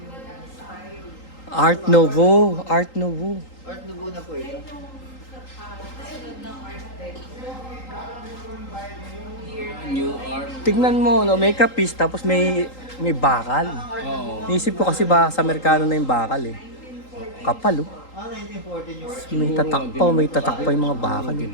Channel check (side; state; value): right; late; 3.8 ms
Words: Art Nouveau. Art Nouveau. Art Nouveau na po ito. New art. Tignan mo, no, may kapis tapos may bakal. Oo. Naisip ko kasi ba sa Amerikano na yung bakal eh. Kapal, oh. 1914 yung art. May tatak pa yung mga bakal. Eh.